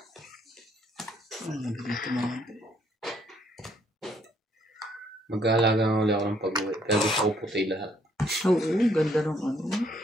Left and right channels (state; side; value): normal; both; correlation 0.68